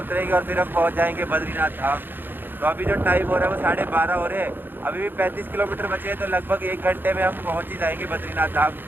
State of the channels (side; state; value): left; late; 0.096 ms